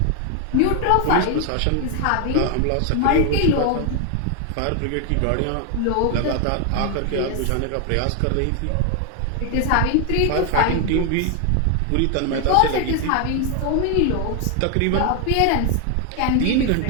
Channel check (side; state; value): both; different; correlation 0.01